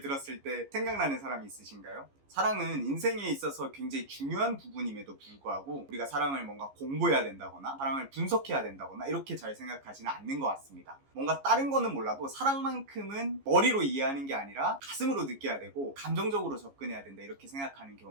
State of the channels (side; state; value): left; late; 15 ms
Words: 때 생각나는 사람이 있으신가요? 사랑은 인생에 있어서 굉장히 중요한 부분임에도 불구하고 우리가 사랑을 뭔가 공부해야 된다거나 사랑을 분석해야 된다거나 이렇게 잘 생각하지는 않는 것 같습니다. 뭔가 다른 거는 몰라도 사랑만큼은 머리로 이해하는 게 아니라 가슴으로 느껴야 되고 감정적으로 접근해야 된다 이렇게 생각하는